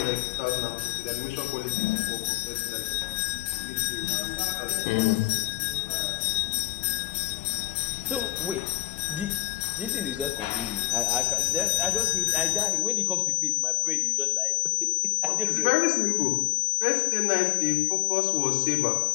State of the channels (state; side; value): quieter; right; 17.0 dB